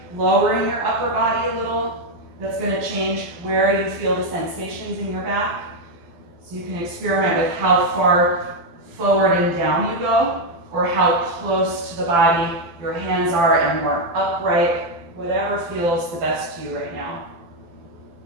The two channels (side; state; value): left; late; 12 ms